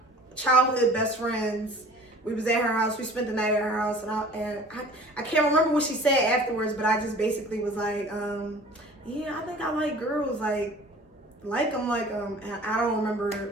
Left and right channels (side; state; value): both; normal; correlation 0.46